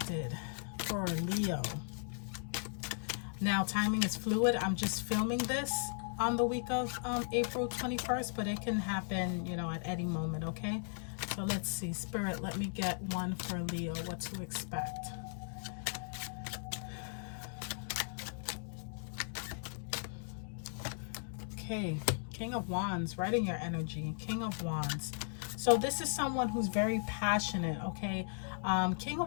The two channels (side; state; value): right; silent; digital silence